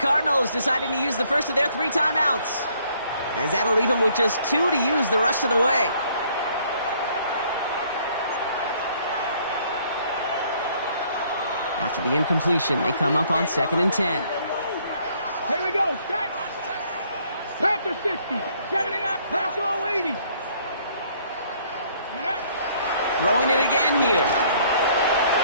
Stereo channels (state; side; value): inverted; both; correlation -0.63